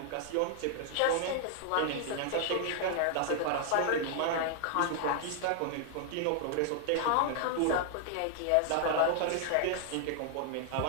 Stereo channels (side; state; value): both; different; correlation 0.00